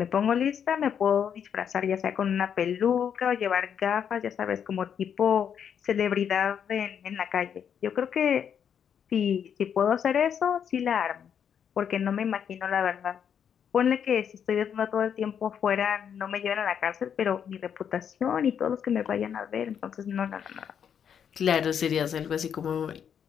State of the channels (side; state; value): right; quieter; 8.1 dB